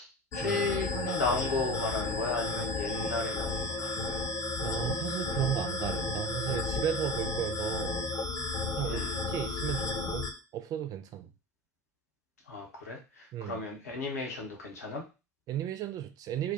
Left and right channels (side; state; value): both; normal; correlation 0.30